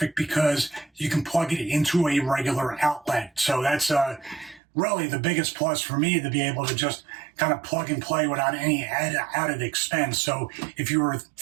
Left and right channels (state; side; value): drops out; left; at 4.6 s